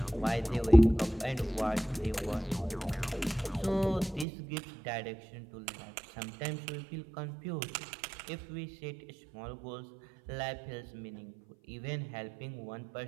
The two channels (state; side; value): drops out; left; at 4.2 s